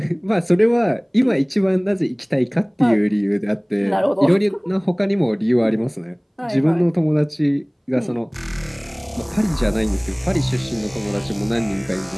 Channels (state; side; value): identical; both; correlation 1.00